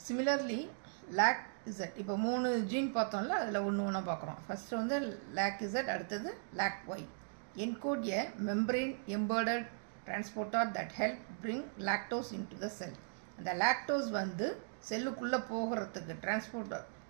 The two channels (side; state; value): left; silent; digital silence